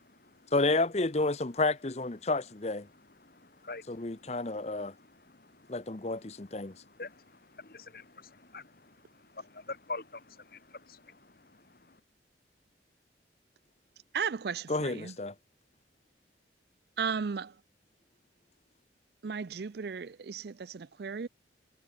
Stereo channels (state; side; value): normal; both; correlation 0.14